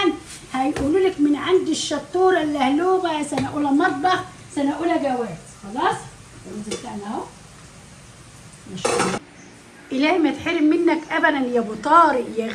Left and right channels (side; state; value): both; identical; correlation 1.00